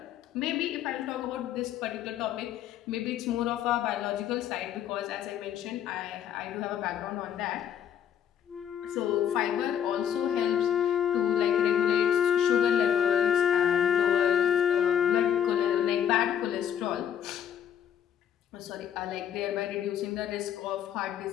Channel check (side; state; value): right; quieter; 9.4 dB